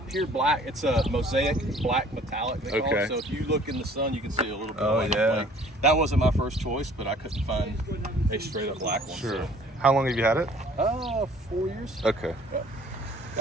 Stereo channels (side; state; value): both; normal; correlation 0.53